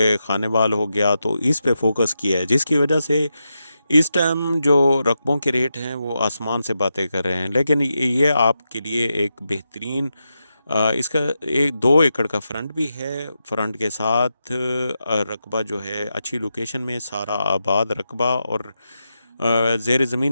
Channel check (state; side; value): inverted; both; correlation -0.88